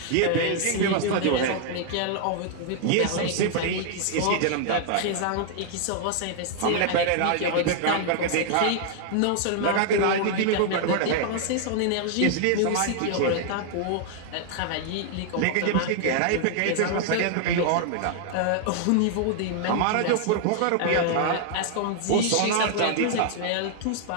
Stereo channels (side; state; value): both; different; correlation 0.00